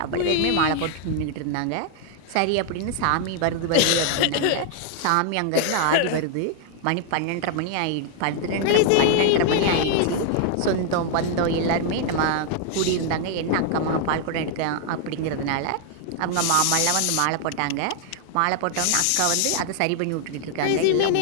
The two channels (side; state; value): both; different; correlation 0.00